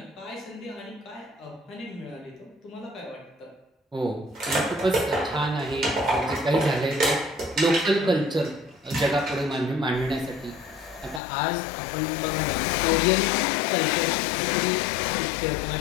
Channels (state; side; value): drops out; right; at 11.2 s